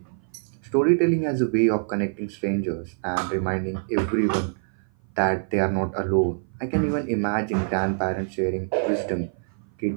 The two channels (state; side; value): silent; left; 56 dB below the other